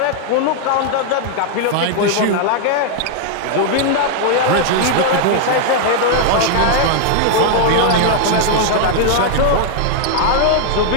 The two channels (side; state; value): both; different; correlation 0.00